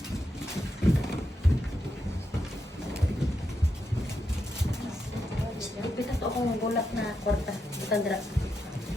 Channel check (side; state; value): both; normal; correlation 0.84